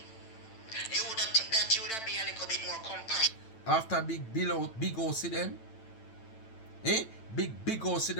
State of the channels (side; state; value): right; late; 9.0 ms